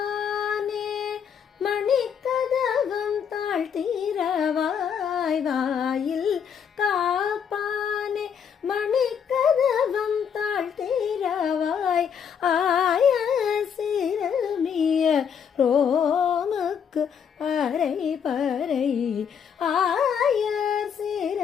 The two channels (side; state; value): right; quieter; 7.5 dB